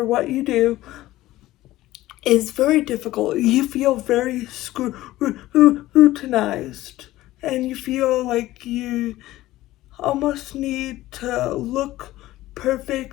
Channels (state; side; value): quieter; right; 16.3 dB